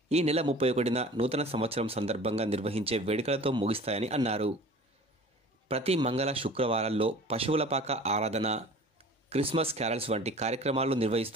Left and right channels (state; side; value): normal; both; correlation 0.43